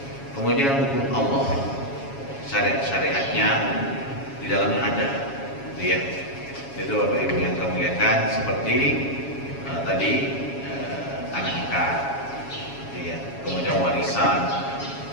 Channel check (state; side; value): late; right; 7.3 ms